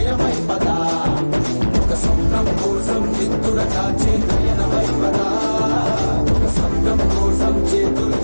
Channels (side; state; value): both; inverted; correlation -1.00